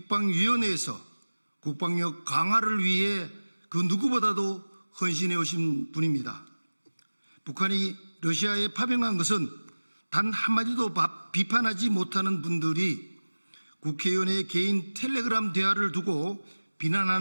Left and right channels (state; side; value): inverted; both; correlation -1.00